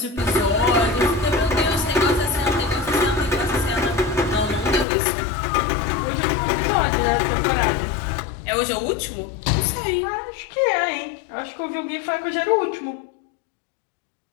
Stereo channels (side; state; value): right; drops out; at 4.9 s